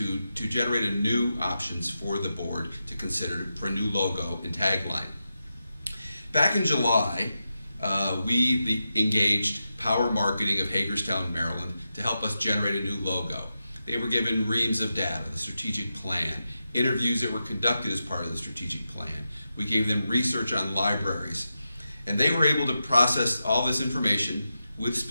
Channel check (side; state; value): both; inverted; correlation -0.89